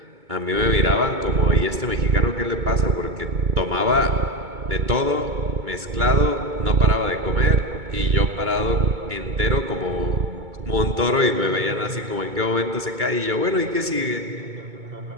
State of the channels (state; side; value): late; left; 2.2 ms